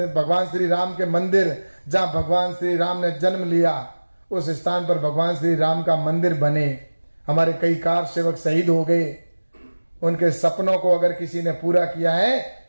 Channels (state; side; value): inverted; both; correlation -1.00